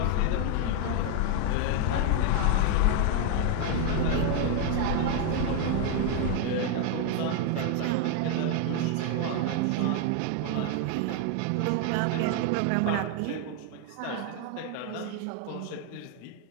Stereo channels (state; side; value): different; both; correlation 0.01